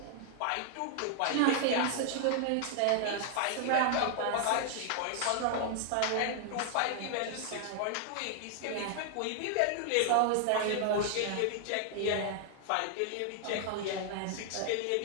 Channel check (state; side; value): different; both; correlation 0.00